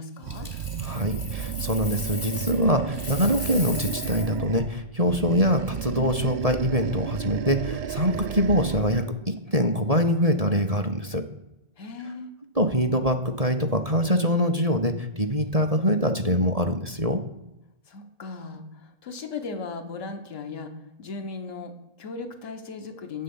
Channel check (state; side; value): late; left; 1.7 ms